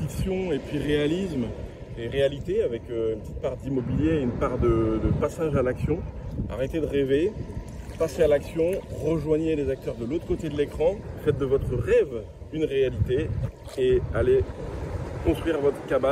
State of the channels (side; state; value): both; identical; correlation 1.00